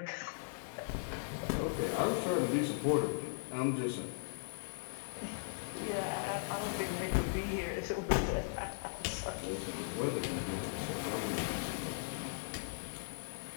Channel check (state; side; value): silent; right; digital silence